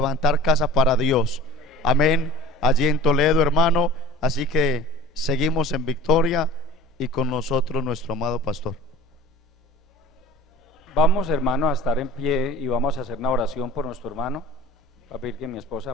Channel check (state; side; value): normal; both; correlation 0.43